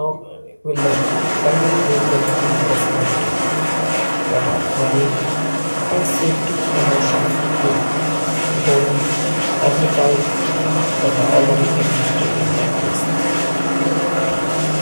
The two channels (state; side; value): inverted; both; correlation -1.00